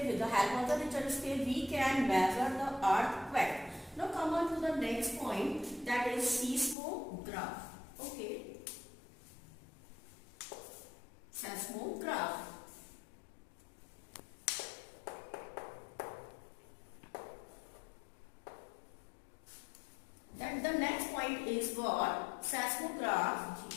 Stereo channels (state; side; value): drops out; right; at 6.8 s